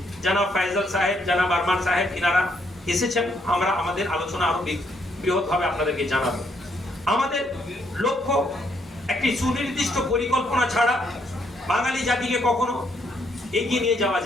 জানাব ফাইজাল সাহেব, জানাব আরমান সাহেব, এনারা এসেছেন। আমরা আমাদের আলোচনা আরো বৃহৎভাবে আপনাদেরকে জানাবো। আমাদের লক্ষ্য একটি সুনির্দিষ্ট পরিকল্পনা ছাড়া বাঙালি জাতিকে কখনো এগিয়ে নিয়ে যাওয়া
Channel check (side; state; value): both; normal; correlation 0.72